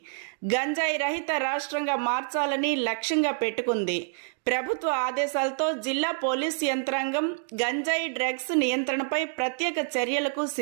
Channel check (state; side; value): silent; left; 60 dB below the other